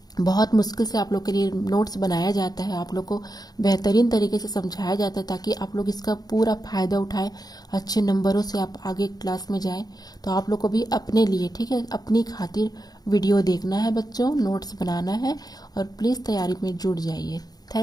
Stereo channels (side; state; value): right; late; 0.19 ms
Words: बहुत मुश्किल से आप लोग के लिए नोट्स बनाया जाता है, आप लोग को बेहतरीन तरीके से समझाया जाता है ताकि आप लोग इसका पूरा फायदा उठाएं, अच्छे नंबरों से आप आगे क्लास में जाएं। तो आप लोग को भी अपने लिए, ठीक है, अपनी खातिर वीडियो देखना है बच्चों, नोट्स बनाना है और प्लीज़ तैयारी में जुट जाइए।